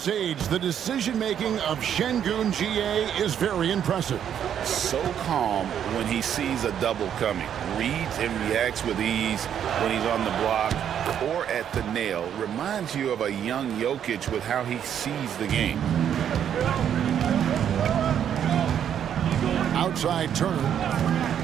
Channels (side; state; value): left; quieter; 9.2 dB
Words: age. The decision-making of Şengün GA is very impressive. So calm when he sees a double coming. Reads and reacts with ease when he's on the block or at the nail. Reminds you of a young Jokic with how he sees the game. Outside Turner.